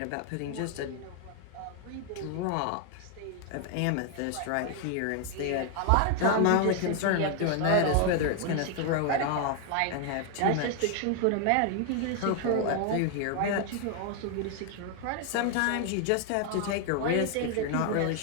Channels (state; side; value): different; both; correlation 0.00